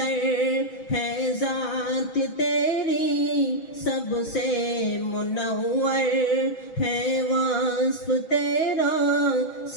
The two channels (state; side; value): late; right; 6.2 ms